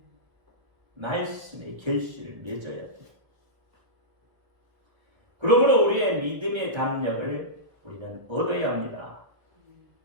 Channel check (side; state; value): left; late; 1.3 ms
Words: 말씀의 결실을 맺어야 돼요. 그러므로 우리의 믿음의 담력을 우리는 얻어야 합니다.